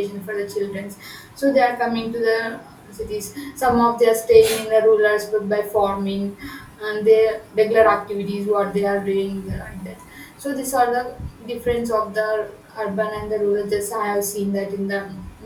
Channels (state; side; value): identical; both; correlation 1.00